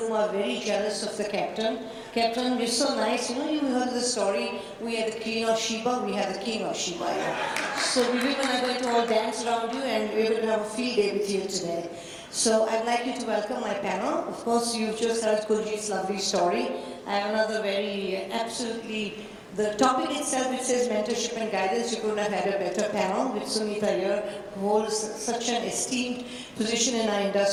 are very jealous of the captain. Captain, you're so nice. You know, you heard the story. We had the Queen of Sheba, we had the King of Sheba. Yeah. So we women are going to all dance around you, and we're going to have a field day with you today. So I'd like you to welcome my panel. Of course, you've just heard Kuljit's lovely story. I have another very absolutely, the topic itself, it says mentorship and guidance. You couldn't have had a better panel with Sunita here, who holds such an esteemed position in our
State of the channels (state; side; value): identical; both; correlation 1.00